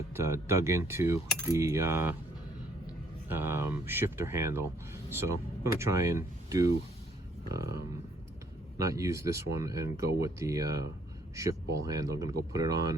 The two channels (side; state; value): both; normal; correlation 0.66